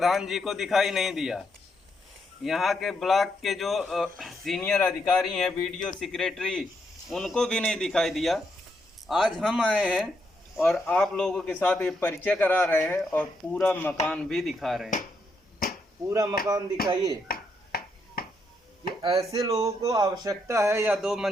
जी को दिखाई नहीं दिया, यहाँ के ब्लॉक के जो सीनियर अधिकारी हैं, वीडियो सेक्रेटरी, उनको भी नहीं दिखाई दिया। आज हम आए हैं और आप लोगों के साथ ये परिचय करा रहे हैं और पूरा मकान भी दिखा रहे हैं। पूरा मकान दिखाइए कि ऐसे लोगों को आवश्यकता है या 2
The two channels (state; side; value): normal; both; correlation 0.78